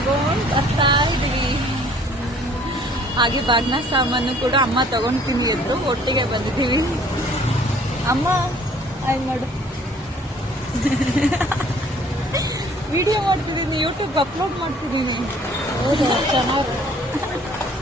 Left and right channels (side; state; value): both; normal; correlation 0.56